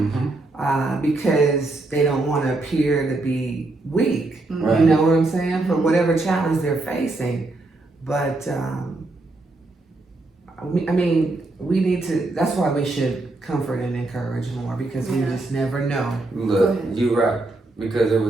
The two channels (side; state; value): left; quieter; 3.0 dB